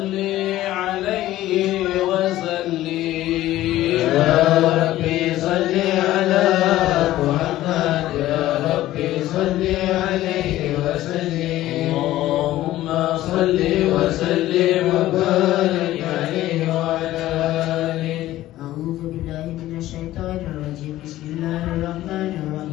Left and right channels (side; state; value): right; quieter; 15.0 dB